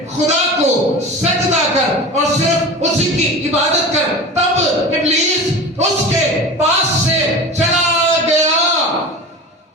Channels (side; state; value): both; normal; correlation 0.32